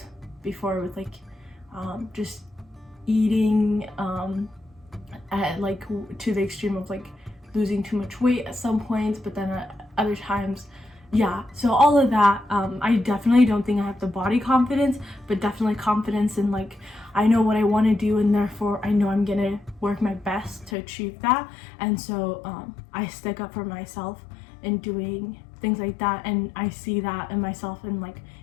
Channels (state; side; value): drops out; right; at 20.8 s